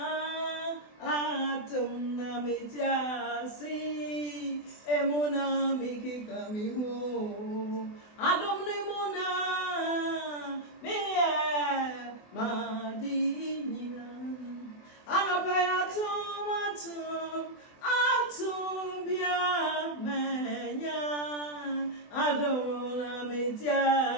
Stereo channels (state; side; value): late; right; 24 ms